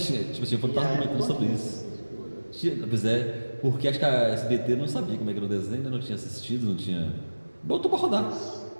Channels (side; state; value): both; inverted; correlation -1.00